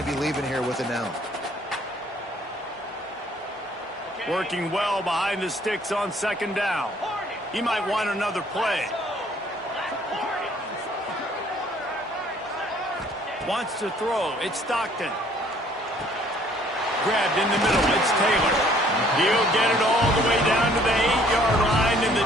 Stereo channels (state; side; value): normal; both; correlation 0.60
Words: to be leaving here with an L. Working well behind the sticks on second down. He might want another play. Wants to throw. It's Stockton. Grabbed in the middle. It's Taylor. He'll get it all the way down to the 8-yard line, and the